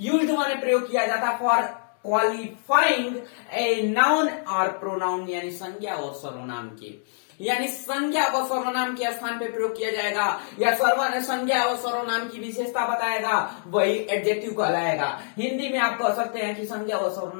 यूज्ड माने प्रयोग किया जाता फॉर क्वालिफाइंग ए नाउन और प्रोनाउन यानी संज्ञा और सर्वनाम के, यानी संज्ञा व सर्वनाम के स्थान पे प्रयोग किया जाएगा या संज्ञा और सर्वनाम की विशेषता बताएगा वही एडजेक्टिव कहलाएगा। हिंदी में आप कह सकते हैं कि संज्ञा व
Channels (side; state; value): right; silent; digital silence